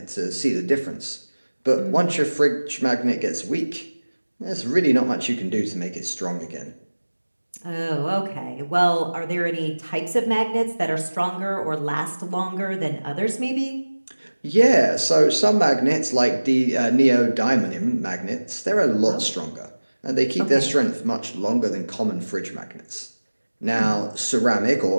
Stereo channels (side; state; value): both; inverted; correlation -1.00